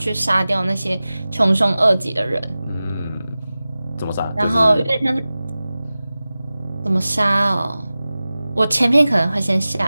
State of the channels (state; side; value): inverted; both; correlation -0.96